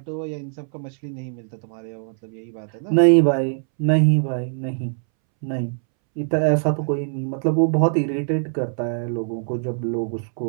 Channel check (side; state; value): left; silent; 64 dB below the other